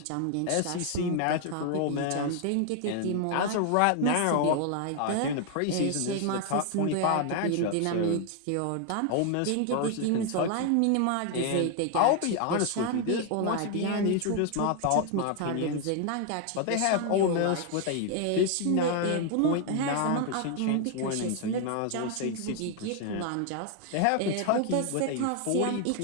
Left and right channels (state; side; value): different; both; correlation 0.00